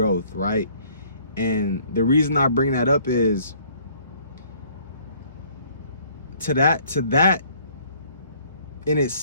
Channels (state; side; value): inverted; both; correlation -0.59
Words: right? And the reason I bring that up is to that in